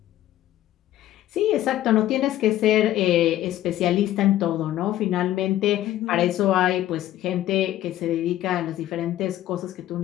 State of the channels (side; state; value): right; quieter; 13.6 dB